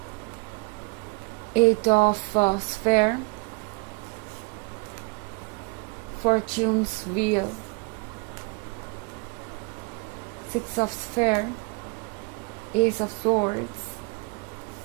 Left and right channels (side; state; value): left; quieter; 30.3 dB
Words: Eight of Sphere, Fortune's Wheel, Six of Sphere, Ace of Swords,